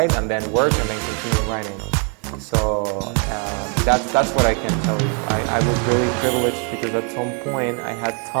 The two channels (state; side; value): quieter; left; 38.8 dB